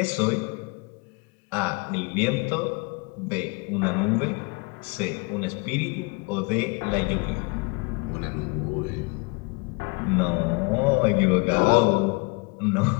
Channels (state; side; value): quieter; right; 29.9 dB